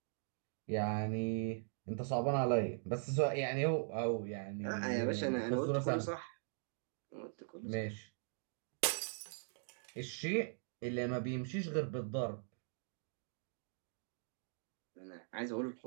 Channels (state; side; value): silent; left; digital silence